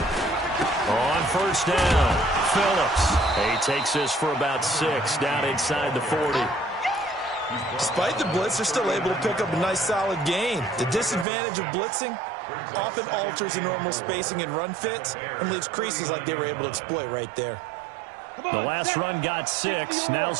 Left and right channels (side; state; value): left; drops out; at 11.2 s